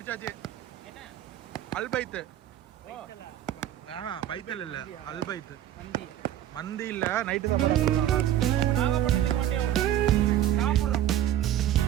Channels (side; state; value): left; quieter; 11.8 dB